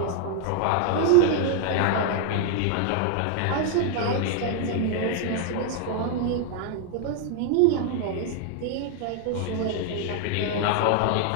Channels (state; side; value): different; both; correlation 0.00